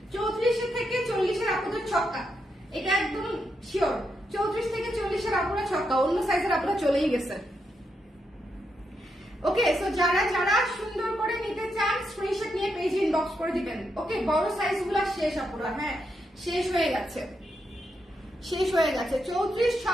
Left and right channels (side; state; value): both; normal; correlation 0.82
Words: 34 থেকে 40 এর আপনাদের ছক্কা, এটা একদম শিওর। 34 থেকে 40 এর আপনারা ছক্কা, অন্য সাইজের আপনারা চলেই গেছে। ওকে, সো যারা যারা সুন্দর করে নিতে চান স্ক্রিনশট নিয়ে পেজে ইনবক্স করে দিবেন। ওকে, বড় সাইজ গুলা শেষ আপুরা, হ্যাঁ শেষ হয়ে গেছে, শেষ হয়ে গেছে। 34,